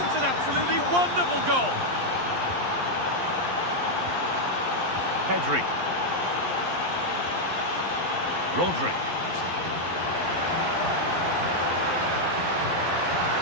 It's an absolutely wonderful goal. Pedri. Rodri.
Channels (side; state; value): left; late; 11 ms